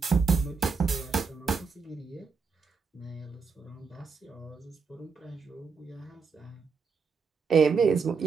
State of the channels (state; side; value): quieter; left; 5.1 dB